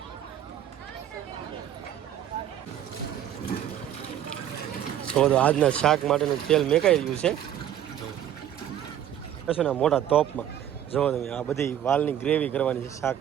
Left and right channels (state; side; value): quieter; left; 10.7 dB